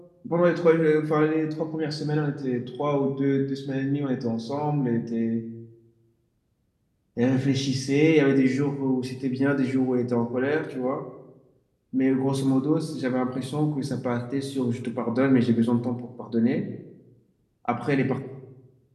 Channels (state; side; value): identical; both; correlation 1.00